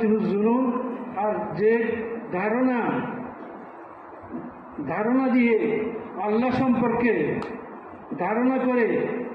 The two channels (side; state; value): both; identical; correlation 1.00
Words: জুনুন, আর যে ধারণা দিয়ে আল্লাহ সম্পর্কে ধারণা করে